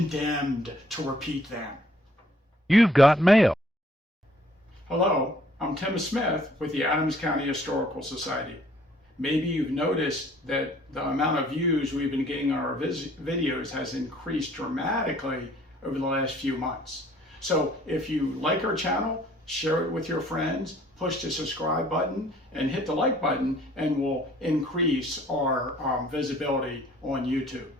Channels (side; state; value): both; normal; correlation 0.59